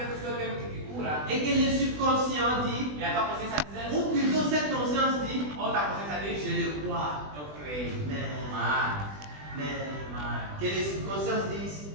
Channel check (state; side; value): late; left; 20 ms